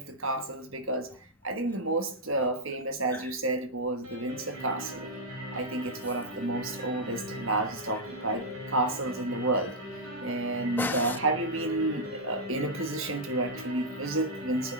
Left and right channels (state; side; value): normal; both; correlation -0.05